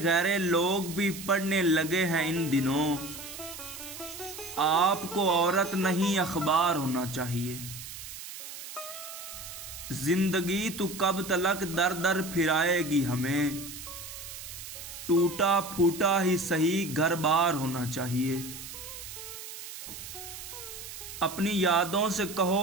लोग भी पढ़ने लगे हैं इन दिनों। आपको औरत नहीं अखबार होना चाहिए। जिंदगी तू कब तलक दर दर फिराएगी हमें। टूटा फूटा ही सही घर बार होना चाहिए। अपनी यादों से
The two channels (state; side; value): noise; right; hiss, 11 dB below the sound